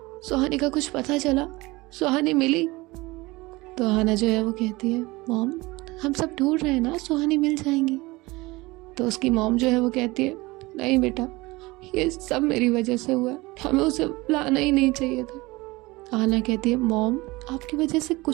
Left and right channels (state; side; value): quieter; left; 21.8 dB